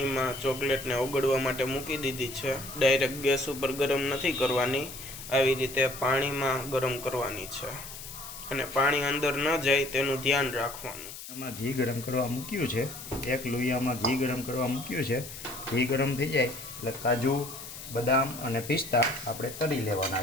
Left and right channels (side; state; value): left; noise; hiss, 12 dB below the sound